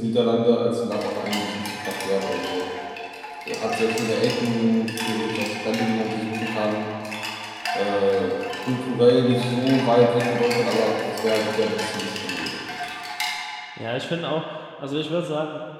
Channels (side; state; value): both; identical; correlation 1.00